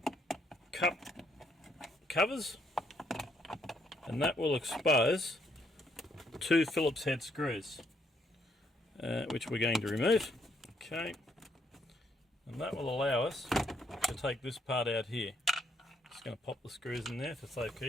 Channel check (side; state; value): both; normal; correlation 0.72